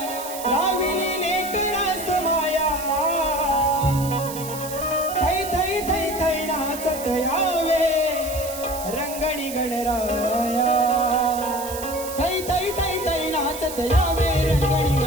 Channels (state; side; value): noise; right; hiss, 10 dB below the sound